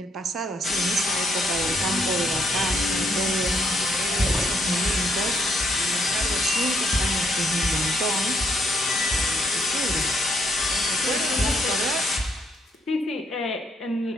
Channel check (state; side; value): normal; both; correlation 0.73